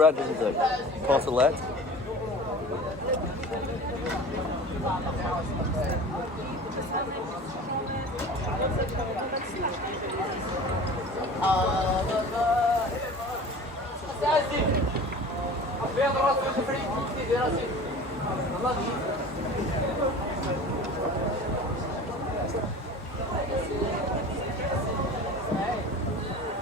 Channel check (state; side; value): normal; both; correlation 0.39